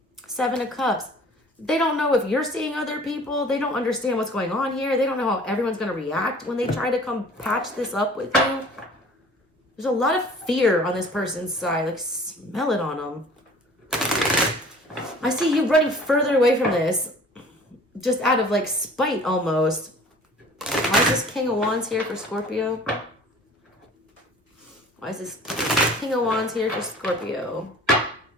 7 of Cups. They don't know if you're seeing other people. They don't understand what's going on here. They don't know how everyone's going to react when they try to come patch this up with you. There's a lot of fear on this person's side. Like, smell it on them. I see you running further away from this. Just out of, like, spite almost. Why is this King of Wands here for Scorpio? Why is this King of Wands here for Scorpio?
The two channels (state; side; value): normal; both; correlation 0.48